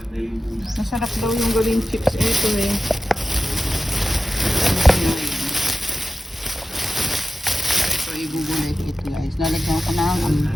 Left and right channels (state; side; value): normal; both; correlation 0.93